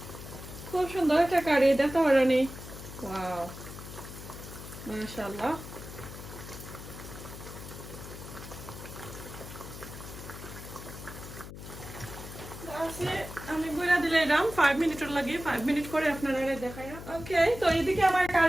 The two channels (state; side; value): noise; left; hum, 12 dB below the sound